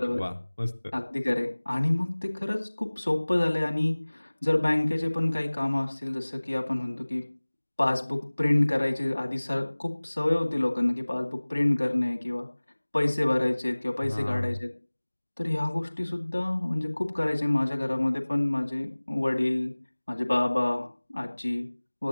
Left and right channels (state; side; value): inverted; both; correlation -1.00